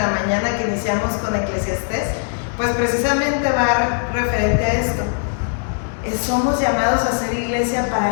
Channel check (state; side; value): silent; right; digital silence